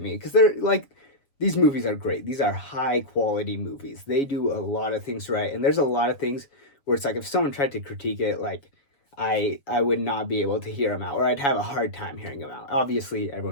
because they're like, these movies are great. These are high quality movies. They do a lot of things right, and there's a lot of things where it's like if someone tried to critique it, like I would not be able to hear them out, or I'd have a hard time hearing them out. Obviously,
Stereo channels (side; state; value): right; late; 7.1 ms